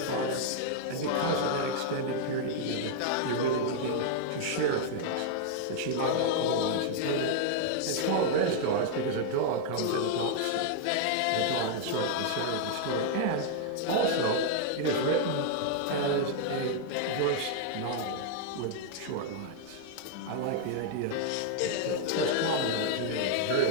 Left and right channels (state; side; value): different; both; correlation -0.01